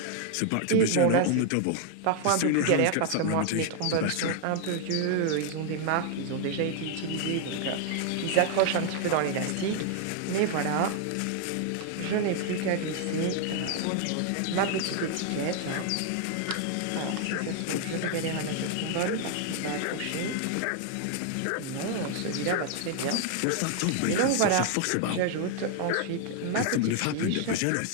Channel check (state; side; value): different; both; correlation 0.00